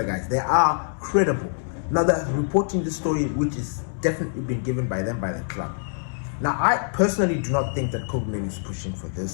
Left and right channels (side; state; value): right; silent; digital silence